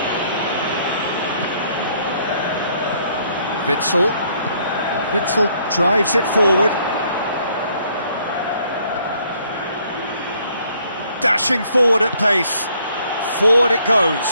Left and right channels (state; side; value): inverted; both; correlation -0.66